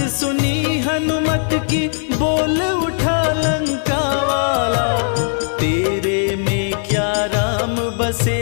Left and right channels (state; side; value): silent; right; 64 dB below the other